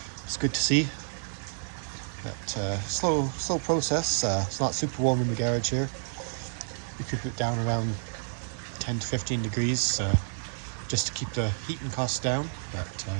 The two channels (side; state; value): left; silent; digital silence